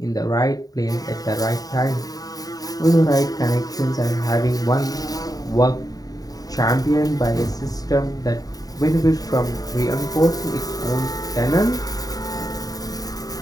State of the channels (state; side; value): late; right; 0.18 ms